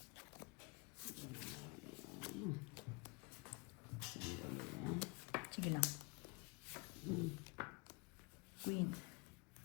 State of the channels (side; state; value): right; quieter; 29.7 dB